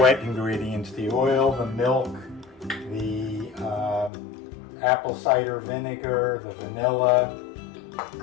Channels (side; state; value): right; drops out; at 4.1 s